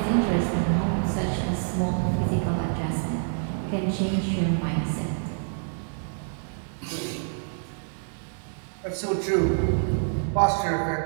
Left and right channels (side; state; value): left; silent; digital silence